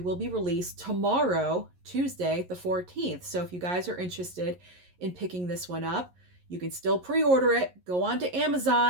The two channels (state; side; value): late; left; 11 ms